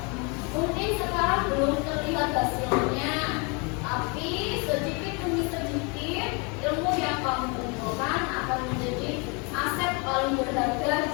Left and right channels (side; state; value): right; quieter; 31.9 dB